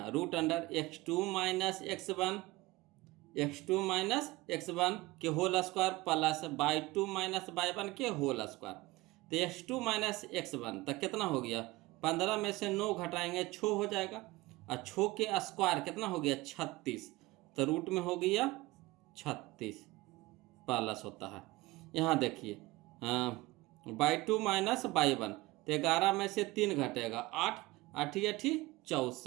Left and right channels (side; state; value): left; quieter; 20.2 dB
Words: root under x2 minus x1 के whole square plus y2 minus y1 के होल स्क्वायर। तो x2 माइनस x1 तक कितना हो गया, 15 में से 9 घटाएंगे 6 हो जाएगा, और 6 के स्क्वायर कितना हो गया 36, तो रूट में हो गया 36 प्लस होता है। यहाँ देखिए y2 माइनस y1, तो 11 में से 3 घटेगा 8, 8